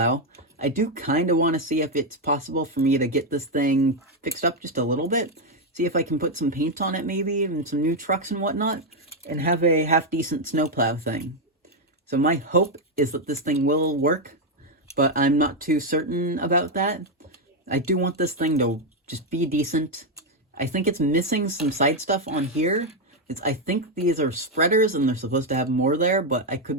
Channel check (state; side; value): normal; both; correlation 0.03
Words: I do kind of want to see if it's possible for me to get this thing fixed up just a little bit. See if I can put some paint on it maybe, and some new trucks and whatnot, and have a half-decent snowplow thing. So my hope is that this thing will work, but I'm not too certain about that. I do want this thing to just be decent. I think it's missing some side stuff on here. I think these are spreaders and they're supposed to have more there, but I